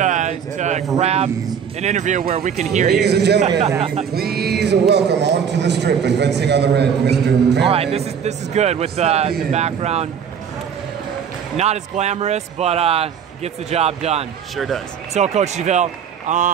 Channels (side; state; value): left; quieter; 7.6 dB